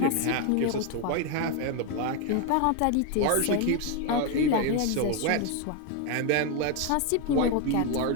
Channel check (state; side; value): different; both; correlation 0.01